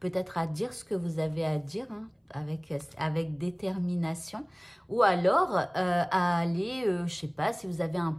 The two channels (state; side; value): identical; both; correlation 1.00